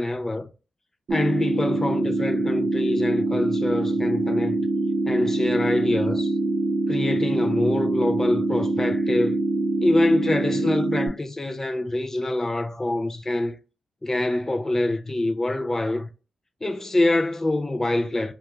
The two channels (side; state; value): both; normal; correlation 0.91